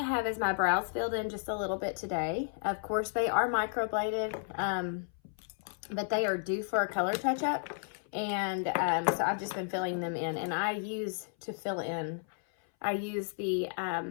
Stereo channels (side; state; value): right; silent; 56 dB below the other